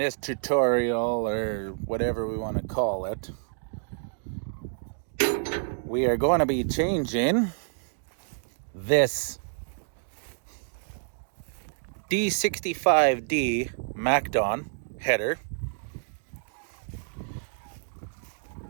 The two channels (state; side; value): silent; left; digital silence